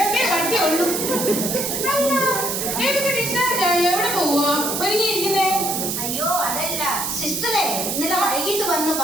കട്ടിയുള്ളൂ. എവിടെ പോവാ ഒരുങ്ങിയിരിക്കുന്നേ? അയ്യോ അതല്ല സിസ്റ്ററെ, ഇന്നലെ വൈകിട്ട് വന്ന്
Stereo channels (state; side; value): noise; right; hiss, 2 dB below the sound